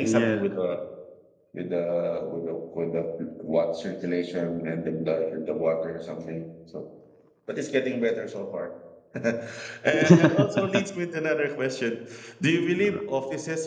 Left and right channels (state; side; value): identical; both; correlation 1.00